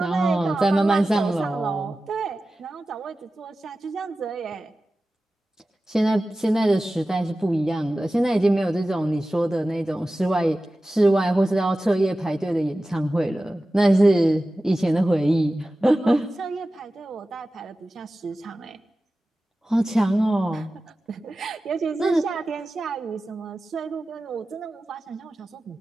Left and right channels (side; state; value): both; normal; correlation 0.95